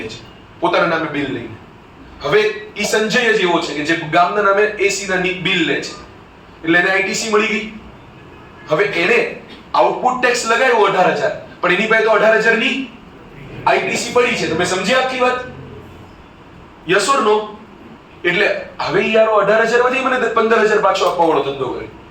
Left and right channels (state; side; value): identical; both; correlation 1.00